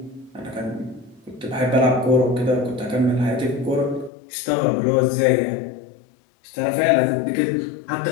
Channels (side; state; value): right; drops out; at 4.1 s